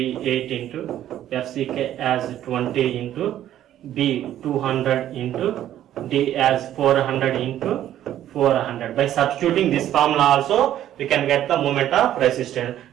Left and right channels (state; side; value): quieter; left; 12.0 dB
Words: into FCK as 20 into B 200 into D as 400 into 400. By substituting this formula also, we can get the moment of resistance,